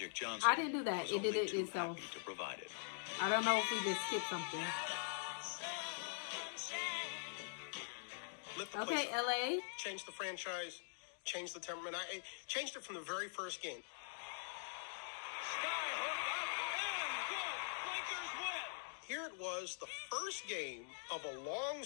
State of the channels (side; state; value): right; silent; digital silence